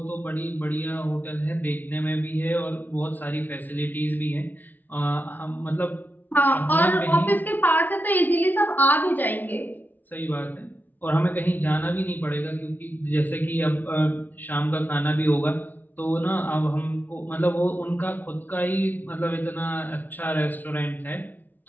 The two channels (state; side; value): late; right; 0.085 ms